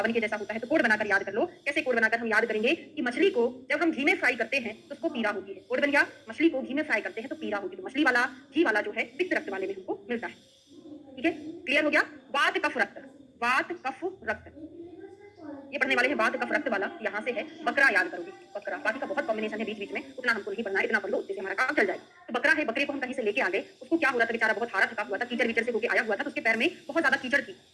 के जैसा होता है। तो कोड बनाकर याद कर लो। कैसे कोड बनाकर हम याद करेंगे कि मछली को जब हम घी में फ्राई करते हैं तो उसको पीड़ा होती है। कोड बन गया, मछली को घी में फ्राई करते हैं तो पीड़ा होती है। तो मछली वाला घी वाला जो है पित्त रक्त वाले में हमको मिलता है। ठीक है, क्लियर हो गया। वात कफ रक्त, वात कफ रक्त ये पढ़ने वाले हैं। वात कफ रक्त वाला यहाँ से है। बकरा याद करोगे, बकरा। बाकी का बहुत कॉम्बिनेशन है बीच बीच में, उतना हमको नहीं पढ़ना है, इतना पढ़ लो, उससे हमारा काम चल जाएगा। तो बकरा है, बकरे को हम कहीं से लेके आ गए, उसको क्या हो रहा था, बेचारा बहुत हारा थका हुआ था, कीचड़ वीचड़ से होके आया हुआ था, तो उसके पैर में बहुत ज्यादा कीचड़ थी।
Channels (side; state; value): both; identical; correlation 1.00